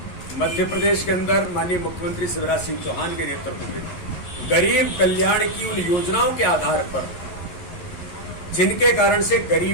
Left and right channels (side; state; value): right; late; 11 ms